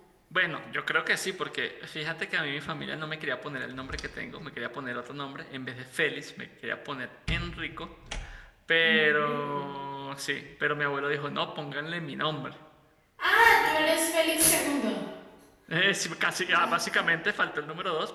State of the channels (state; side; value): identical; both; correlation 1.00